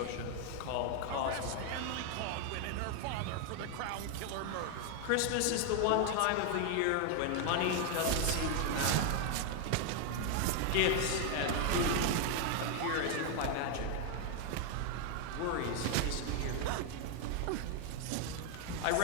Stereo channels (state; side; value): different; both; correlation 0.00